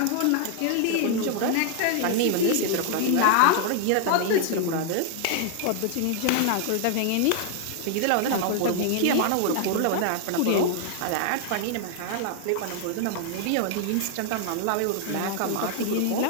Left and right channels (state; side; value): different; both; correlation 0.00